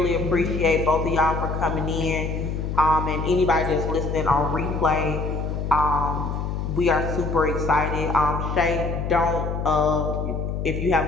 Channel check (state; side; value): noise; left; hum, 3 dB below the sound